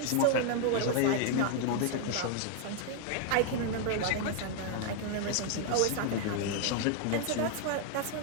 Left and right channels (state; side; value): different; both; correlation 0.00